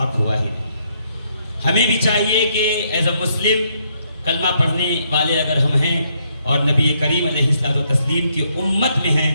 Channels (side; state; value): both; inverted; correlation -0.73